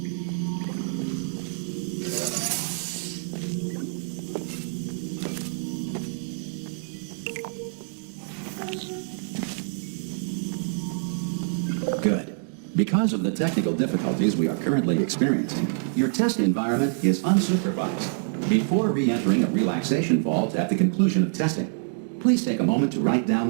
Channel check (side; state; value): left; silent; digital silence